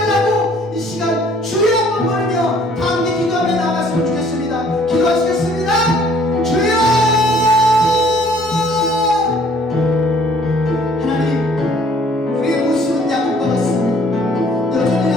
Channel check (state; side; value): normal; both; correlation 0.59